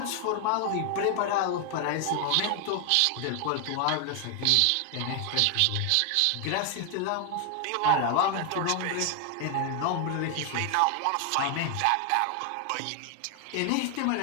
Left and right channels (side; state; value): both; different; correlation 0.00